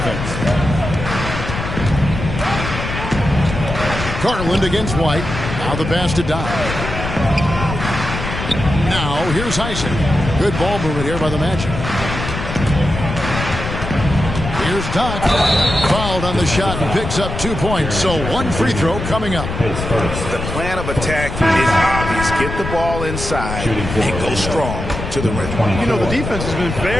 Garland against White. Now the pass to Doc. Now here's Isaac. Good ball movement here by the Magic. Here's Doc. Fouled on the shot and picks up 2 points. So 1 free throw coming up. The plan of attack is obvious. Get the ball inside and go strong to the rim. You know, the defense has been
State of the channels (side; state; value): left; noise; rumble, 6 dB below the sound